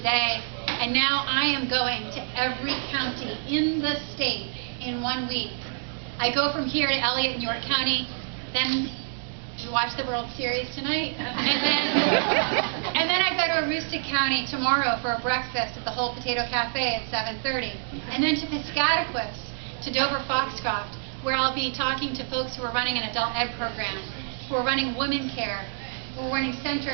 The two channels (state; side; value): silent; left; digital silence